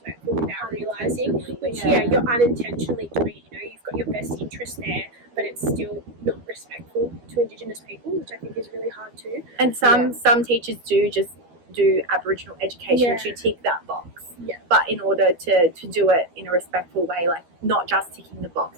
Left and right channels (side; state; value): left; late; 12 ms